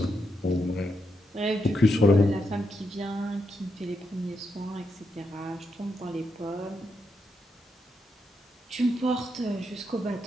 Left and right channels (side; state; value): both; normal; correlation 0.82